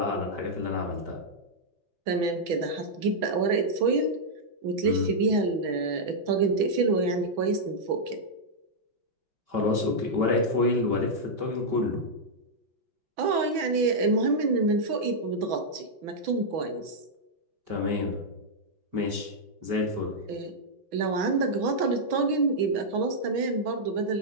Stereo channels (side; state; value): left; late; 6.1 ms